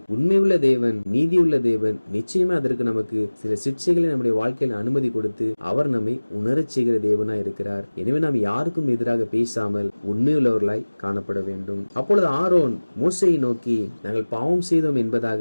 உண்மையுள்ள தேவன், நீதியுள்ள தேவன் நிச்சயமா அதற்கு நமக்கு சில சிக்ஷைகளை நம்முடைய வாழ்க்கையில் அனுமதி கொடுத்து அவர் நம்மை உணரச் செய்கிற தேவனாய் இருக்கிறார். எனவே நாம் யாருக்கும் எதிராக பேசாமல் உண்மையுள்ளவர்களாய் காணப்பட வேண்டும். அப்பொழுது ஆரோன் மோசேயை நோக்கி, நாங்கள் பாவம் செய்தோம் என்பதாக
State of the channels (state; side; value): inverted; both; correlation -1.00